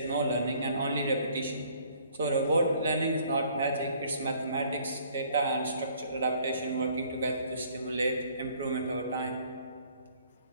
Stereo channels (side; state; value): both; inverted; correlation -0.59